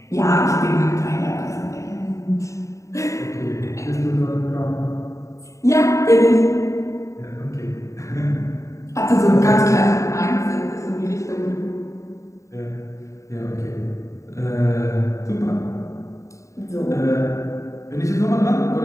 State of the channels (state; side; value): late; right; 0.15 ms